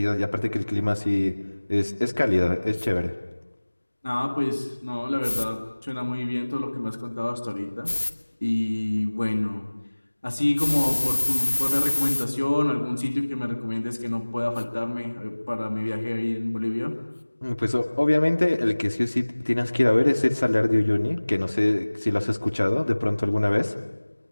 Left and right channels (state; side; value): inverted; both; correlation -1.00